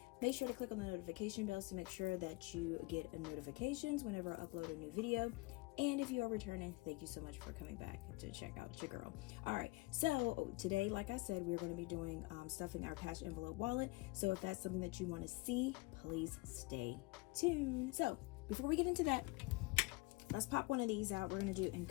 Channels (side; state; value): right; quieter; 24.2 dB